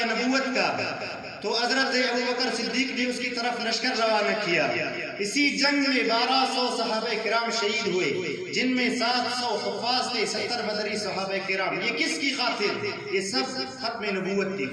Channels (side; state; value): both; identical; correlation 1.00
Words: نبوت کا تو حضرت ابوبکر صدیق نے اس کی طرف لشکر روانہ کیا. اسی جنگ میں 1200 صحابہ کرام شہید ہوئے، جن میں 700 حفاظ تھے، 70 بدری صحابہ کرام. یہ کس کی خاطر؟ یہ سب ختم نبوت کی